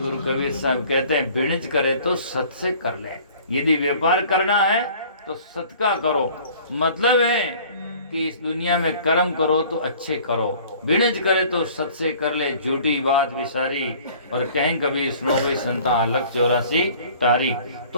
कबीर साहब कहते हैं बिणज करे तो सत से कर ले। यदि व्यापार करना है तो सत का करो, मतलब है कि इस दुनिया में कर्म करो तो अच्छे करो, बिणज करे तो सत से कर ले, झूठी बात विसारी। और कहीं कभी सुनो गई संता लक 84 तारीख, तो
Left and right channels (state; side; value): inverted; both; correlation -0.50